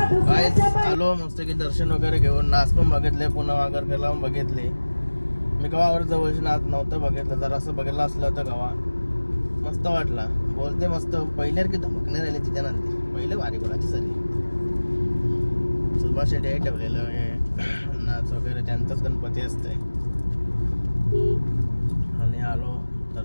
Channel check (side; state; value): both; inverted; correlation -1.00